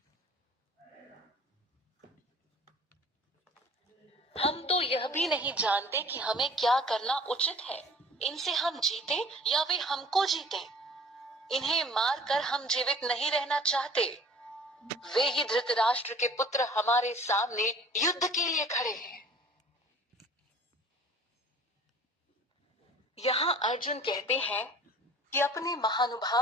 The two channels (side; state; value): both; normal; correlation 0.48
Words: हम तो यह भी नहीं जानते कि हमें क्या करना उचित है। इनसे हम जीते या वे हमको जीते। इन्हें मारकर हम जीवित नहीं रहना चाहते। वे ही धृतराष्ट्र के पुत्र हमारे सामने युद्ध के लिए खड़े हैं। यहाँ अर्जुन कहते हैं कि अपने